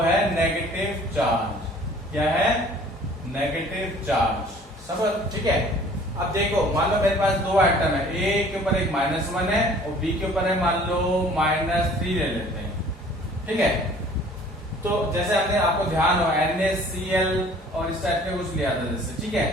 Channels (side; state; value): both; normal; correlation 0.52